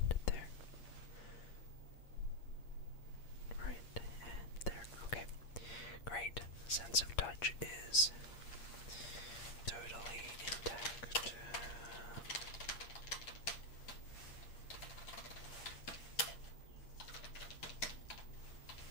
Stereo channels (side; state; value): right; late; 8.6 ms